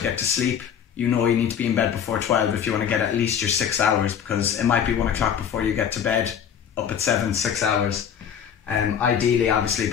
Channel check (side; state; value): right; quieter; 8.3 dB